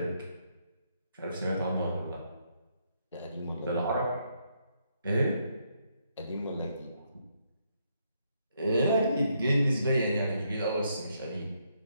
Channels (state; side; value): inverted; both; correlation -0.75